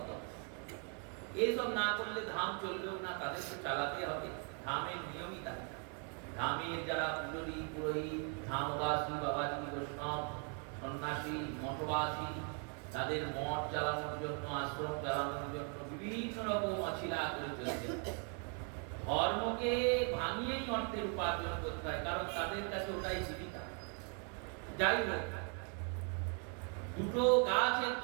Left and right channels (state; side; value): quieter; left; 39.8 dB